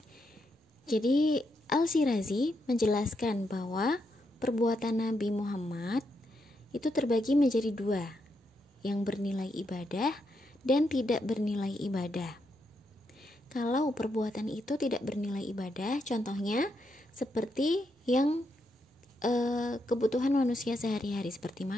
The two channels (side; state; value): both; normal; correlation 0.81